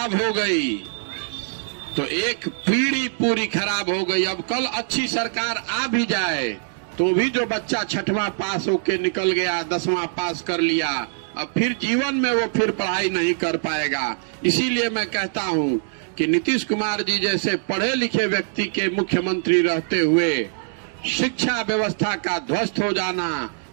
हो गई तो एक पीढ़ी पूरी खराब हो गई। अब कल अच्छी सरकार आ भी जाए तो भी जो बच्चा 6वां पास होके निकल गया, 10वां पास कर लिया, अब फिर जीवन में वो फिर पढ़ाई नहीं कर पाएगा। इसीलिए मैं कहता हूं कि नीतीश कुमार जी जैसे पढ़े लिखे व्यक्ति के मुख्यमंत्री रहते हुए शिक्षा व्यवस्था का ध्वस्त हो जाना,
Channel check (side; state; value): left; silent; 63 dB below the other